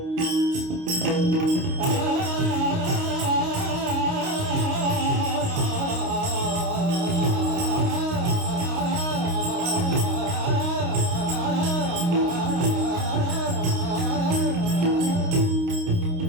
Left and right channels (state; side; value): late; left; 29 ms